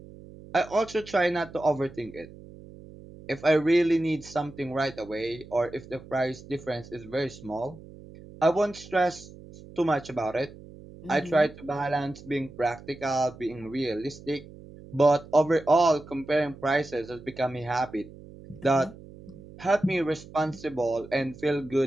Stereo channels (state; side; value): noise; right; hum, 18 dB below the sound